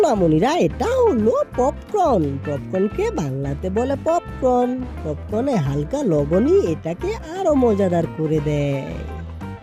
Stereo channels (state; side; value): identical; both; correlation 1.00